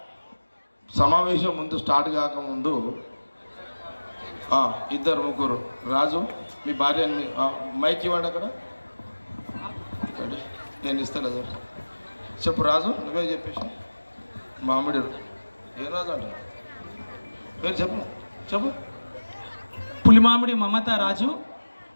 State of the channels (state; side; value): inverted; both; correlation -1.00